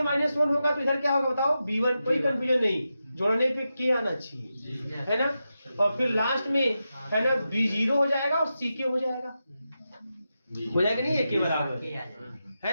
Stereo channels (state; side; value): inverted; both; correlation -0.89